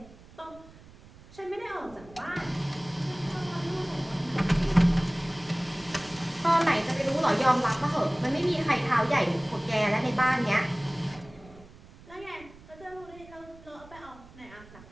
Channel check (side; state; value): right; noise; rumble, 22 dB below the sound